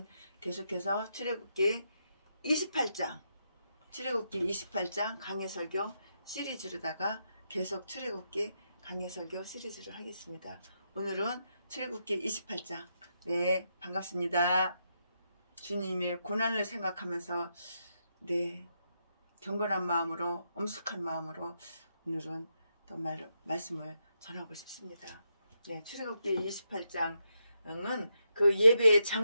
계속해서 출애굽기 28장 강해설교 시리즈로다가 계속 출애굽기 강해설교 시리즈를 하겠습니다. 오늘은 출애굽기 28장. 네, 반갑습니다. 주님의 고난을 생각하면서 경건한 마음으로 엄숙한 마음으로 오늘은 또 말씀을 전하고 싶습니다. 네, 출애굽기 28장은 그 예배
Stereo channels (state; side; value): inverted; both; correlation -0.82